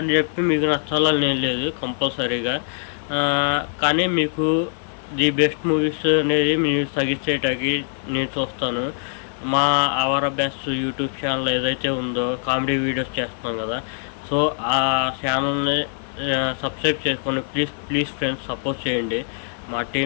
చెప్పి మీకు నచ్చాలని నేను లేదు కంపల్సరీగా. కానీ మీకు ది బెస్ట్ మూవీస్ అనేది మీరు సజెస్ట్ చేయడానికి నేను చూస్తాను. మా అవర్ బెస్ట్ యూట్యూబ్ ఛానల్ ఏదైతే ఉందో కామెడీ వీడియోస్ చేస్తున్నాం కదా, సో ఆ ఛానల్ని సబ్స్క్రైబ్ చేసుకొని ప్లీజ్ ఫ్రెండ్స్ సపోర్ట్ చేయండి. మా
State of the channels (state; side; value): silent; right; 56 dB below the other